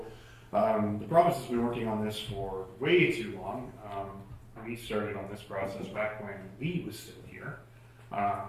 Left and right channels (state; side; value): identical; both; correlation 1.00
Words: The province has been working on this for way too long. We started on this process back when Lee was still here.